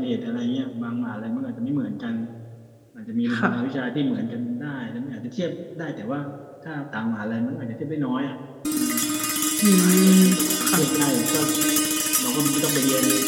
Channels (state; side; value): identical; both; correlation 1.00